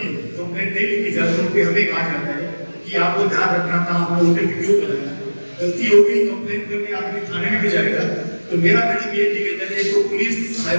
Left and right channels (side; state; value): both; inverted; correlation -1.00